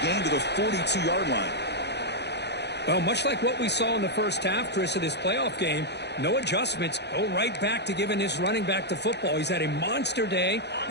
gain to the 42-yard line. Well, much like what we saw in the first half, Chris, of this playoff game, no adjustments. Go right back to giving his running back the football. He's had a monster day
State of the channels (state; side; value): late; right; 0.49 ms